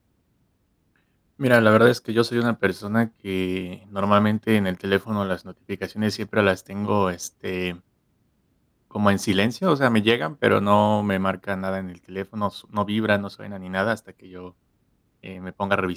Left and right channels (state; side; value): identical; both; correlation 1.00